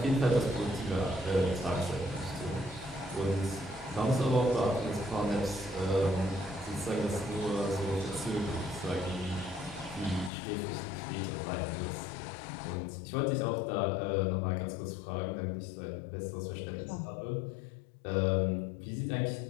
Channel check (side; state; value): right; drops out; at 10.3 s